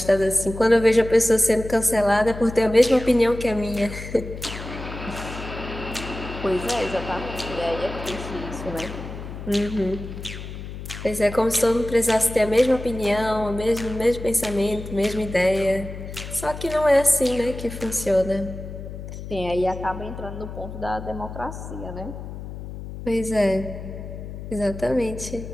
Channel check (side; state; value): left; noise; hum, 10 dB below the sound